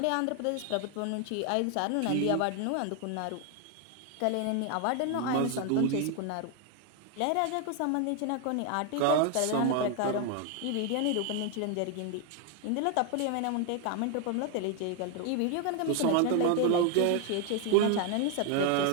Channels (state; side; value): different; both; correlation 0.01